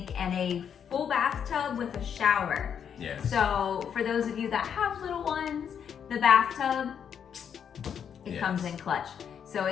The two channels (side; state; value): right; quieter; 8.0 dB